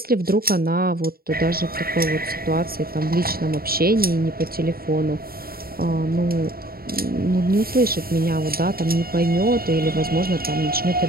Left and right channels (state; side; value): late; left; 0.43 ms